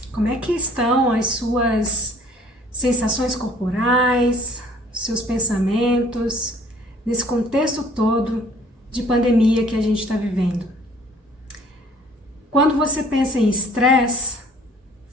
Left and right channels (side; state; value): both; normal; correlation 0.56